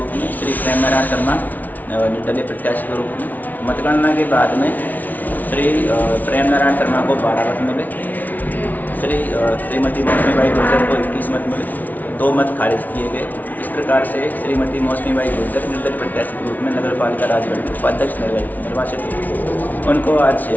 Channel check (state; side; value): late; right; 0.079 ms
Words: में, श्री प्रेम नारायण शर्मा निर्दलीय प्रत्याशी के रूप में। मतगणना के बाद में श्री प्रेम नारायण शर्मा को 12 मत मिले, श्रीमती मौसमी बाई गुर्जर को 21 मत मिले, 2 मत खारिज किए गए। इस प्रकार से श्रीमती मौसमी बाई गुर्जर निर्दलीय प्रत्याशी के रूप में नगर पालिका राजगढ़ के उपाध्यक्ष निर्वाचित हुए। उनको आज